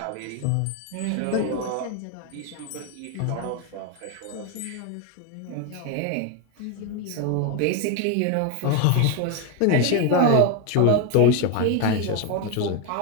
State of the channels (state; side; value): different; both; correlation 0.02